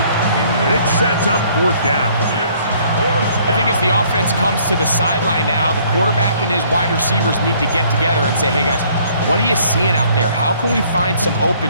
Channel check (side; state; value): both; inverted; correlation -0.60